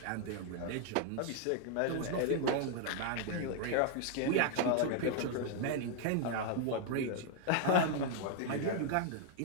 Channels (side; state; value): both; different; correlation 0.00